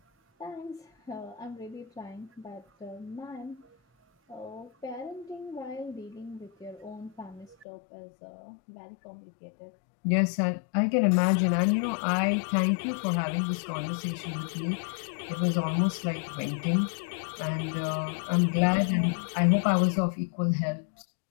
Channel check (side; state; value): right; drops out; at 7.7 s